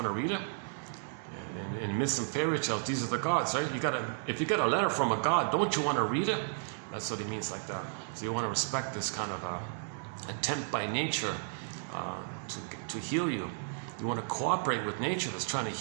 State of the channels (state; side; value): silent; left; digital silence